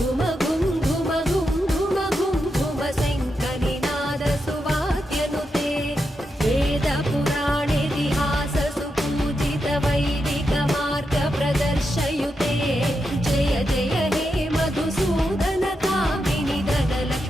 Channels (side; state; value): both; normal; correlation 0.86